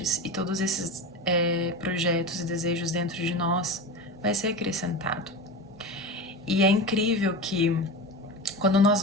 e todos esses projetos e desejos dentro de nós vai ser acrescentado. E é incrível que quando nós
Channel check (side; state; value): both; normal; correlation 0.26